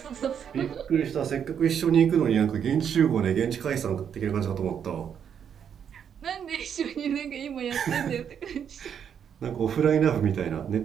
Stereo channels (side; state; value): left; quieter; 8.1 dB